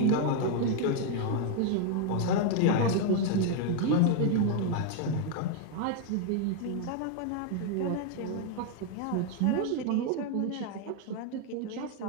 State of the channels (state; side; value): different; both; correlation 0.00